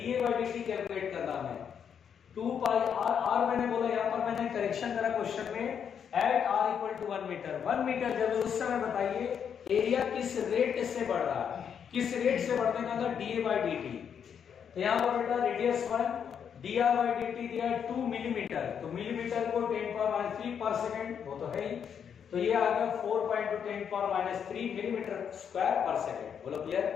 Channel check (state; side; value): quieter; right; 7.7 dB